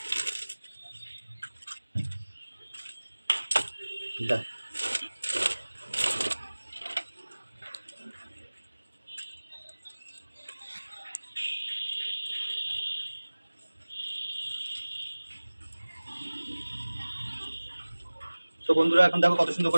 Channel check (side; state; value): both; inverted; correlation -1.00